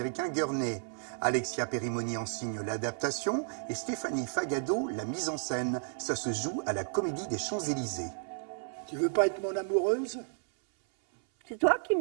Gurney. Alexia Perimoni en signe l'adaptation et Stéphanie Fagado la mise en scène. Ça se joue à la Comédie des Champs-Élysées. Tu veux pas être mon amoureuse ? C'est toi qui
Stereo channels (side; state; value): left; silent; 56 dB below the other